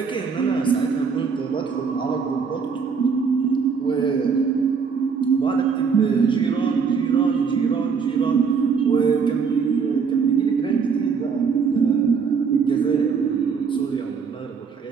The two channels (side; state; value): left; quieter; 5.8 dB